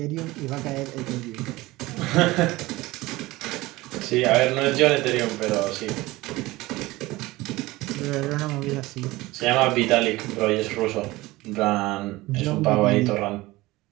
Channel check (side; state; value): left; quieter; 19.7 dB